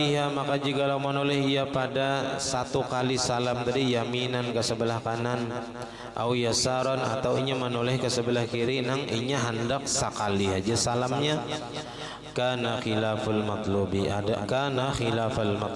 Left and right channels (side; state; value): both; identical; correlation 1.00